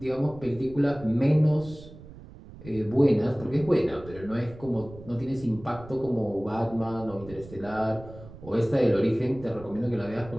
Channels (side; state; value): right; noise; rumble, 17 dB below the sound